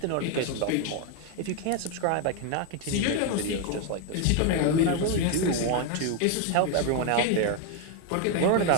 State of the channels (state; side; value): different; both; correlation 0.01